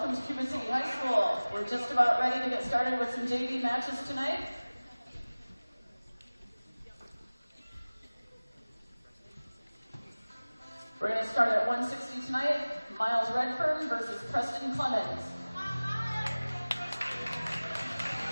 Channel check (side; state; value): both; inverted; correlation -1.00